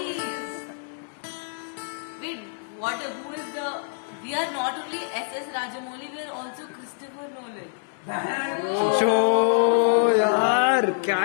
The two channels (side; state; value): right; silent; 61 dB below the other